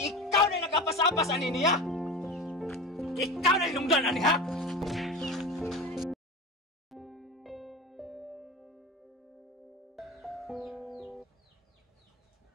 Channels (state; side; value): normal; both; correlation 0.30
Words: ikaw na nagkapasapas ani niya! Ikaw na inungdan ani ha!